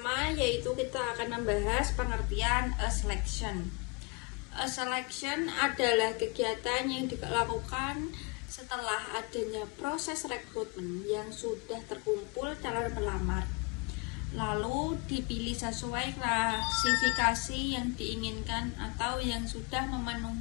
yaitu kita akan membahas pengertian selection. Selection adalah kegiatan yang dilakukan setelah adanya proses rekrutmen yang sudah terkumpul calon pelamar. Lalu dipilih sesuai klasifikasi yang diinginkan atau yang sudah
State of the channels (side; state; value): right; quieter; 30.1 dB